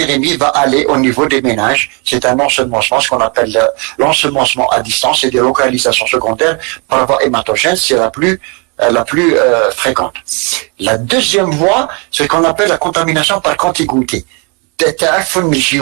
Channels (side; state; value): left; quieter; 33.9 dB